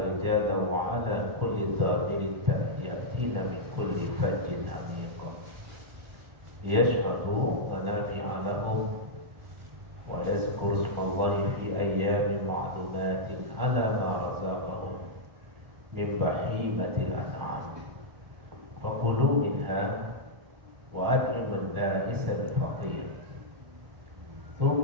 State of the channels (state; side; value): late; left; 1.4 ms